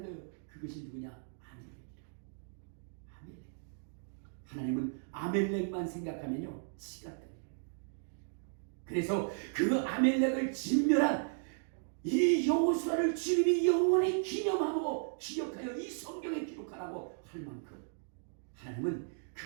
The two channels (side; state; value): left; silent; digital silence